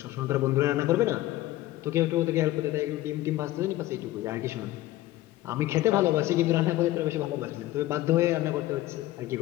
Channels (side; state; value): right; quieter; 16.0 dB